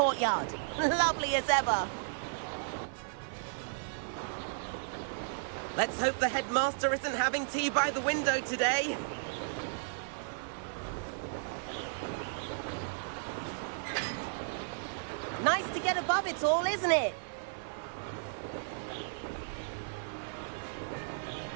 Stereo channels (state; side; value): silent; left; digital silence